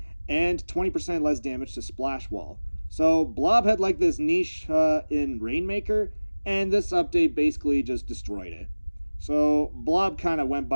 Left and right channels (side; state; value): both; inverted; correlation -1.00